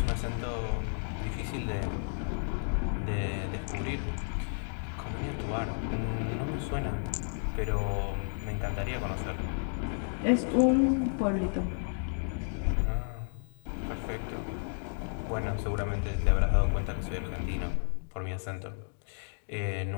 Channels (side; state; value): right; silent; digital silence